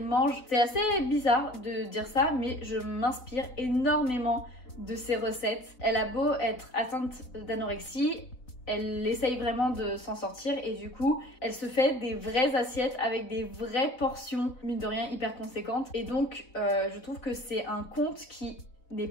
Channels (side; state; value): right; late; 4.0 ms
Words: mange. C'est assez bizarre de dire ça, mais je m'inspire énormément de ses recettes. Elle a beau être atteinte d'anorexie, elle essaye vraiment de s'en sortir et du coup elle se fait des vraies assiettes avec des vraies portions, mine de rien hyper conséquentes. Et donc je trouve que c'est un compte qui n'est